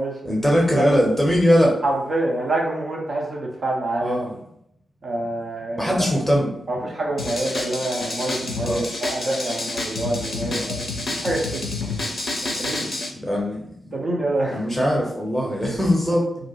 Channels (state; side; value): normal; both; correlation 0.88